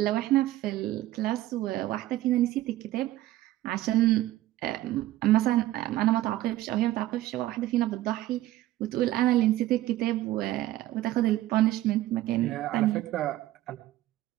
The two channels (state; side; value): quieter; left; 15.2 dB